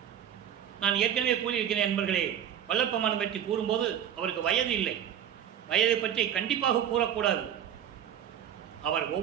நான் ஏற்கனவே கூறியிருக்கிறேன் நண்பர்களே. வல்லப்பமானம் பற்றி கூறும்போது அவருக்கு வயது இல்லை. வயதை பற்றி கண்டிப்பாக கூறக்கூடாது. அவர்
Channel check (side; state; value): left; quieter; 9.7 dB